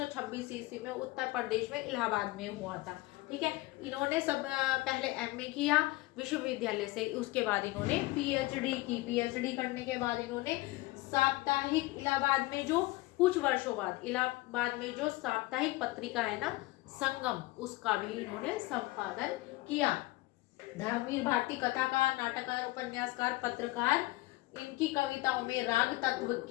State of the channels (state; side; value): quieter; right; 20.1 dB